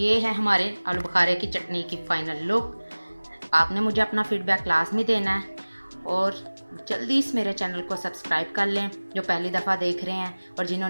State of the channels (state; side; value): inverted; both; correlation -1.00